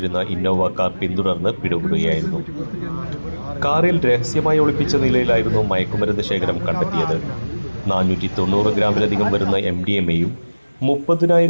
ഇന്നോവ കാർ പിന്തുടർന്ന് പിടികൂടുകയായിരുന്നു. കാറിൽ രഹസ്യമായി ഒളിപ്പിച്ച നിലയിലായിരുന്നു മയക്കുമരുന്ന് ശേഖരം കണ്ടെത്തിയത്. 490 ഗ്രാമിലധികം വരുന്ന MDMA-യും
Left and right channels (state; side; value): inverted; both; correlation -1.00